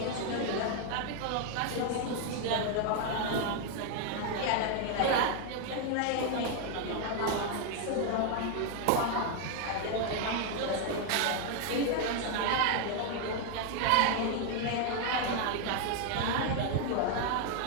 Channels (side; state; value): both; different; correlation 0.00